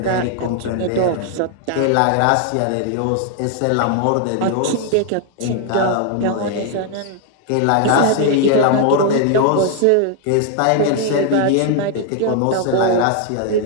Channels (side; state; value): both; different; correlation 0.00